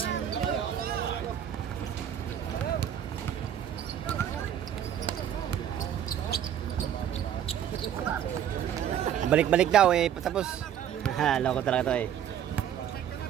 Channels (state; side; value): quieter; left; 9.8 dB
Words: Balik-balik daw eh, patapos. Ha, loko talaga to eh.